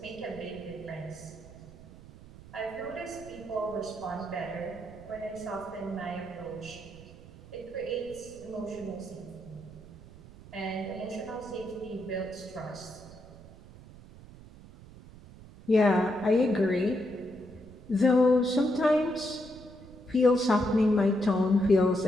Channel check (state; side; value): noise; right; rumble, 18 dB below the sound